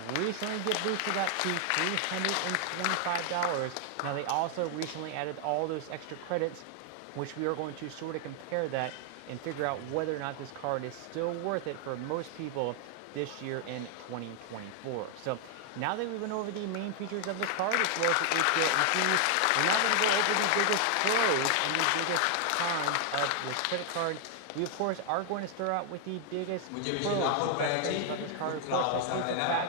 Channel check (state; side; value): different; both; correlation 0.00